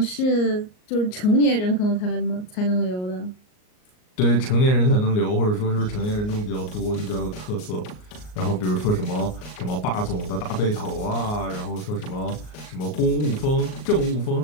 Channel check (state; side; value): late; right; 38 ms